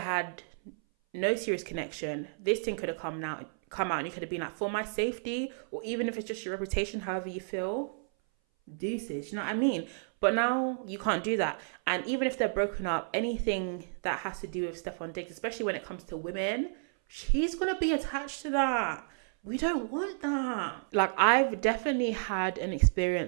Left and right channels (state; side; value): silent; left; 57 dB below the other